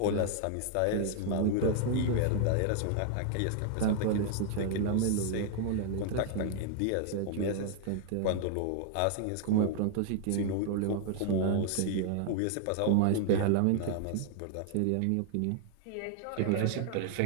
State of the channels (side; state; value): both; different; correlation 0.00